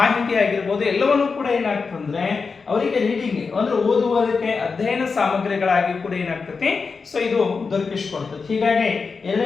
ಆಗಿರ್ಬೋದು, ಎಲ್ಲವನ್ನೂ ಕೂಡ ಏನಾಗ್ತಂದ್ರೆ ಅವರಿಗೆ ರೀಡಿಂಗ್ ಅಂದ್ರೆ ಓದುವುದಕ್ಕೆ ಅಧ್ಯಯನ ಸಾಮಗ್ರಿಗಳಾಗಿ ಕೂಡ ಏನಾಗ್ತದೆ ಸೊ ಇದು ದೊರಕಿಸ್ಕೊಡ್ತದೆ. ಹೀಗಾಗಿ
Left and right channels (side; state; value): right; quieter; 4.9 dB